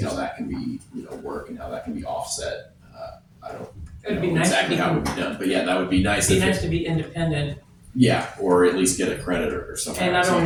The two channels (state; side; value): identical; both; correlation 1.00